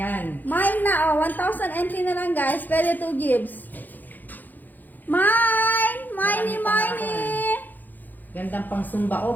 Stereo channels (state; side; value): late; right; 0.085 ms